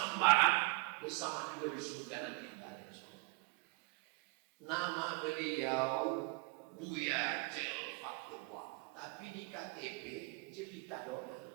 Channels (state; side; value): quieter; left; 26.4 dB